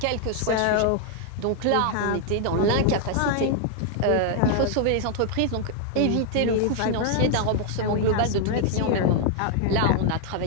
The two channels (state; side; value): different; both; correlation 0.00